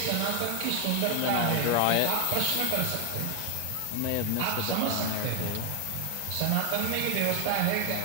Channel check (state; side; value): different; both; correlation 0.01